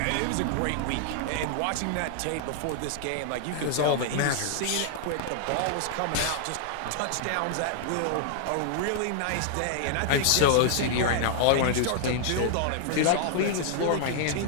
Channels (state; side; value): different; both; correlation 0.00